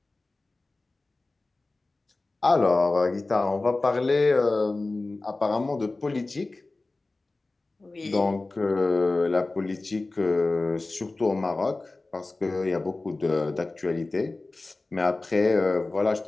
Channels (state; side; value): quieter; right; 3.2 dB